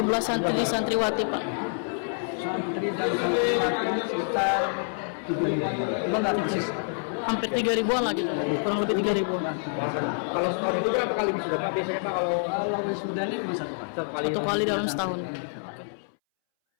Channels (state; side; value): silent; right; 60 dB below the other